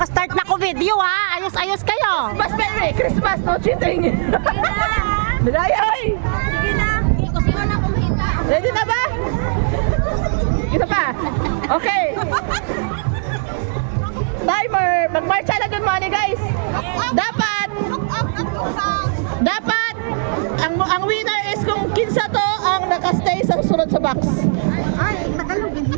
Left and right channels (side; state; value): left; silent; 65 dB below the other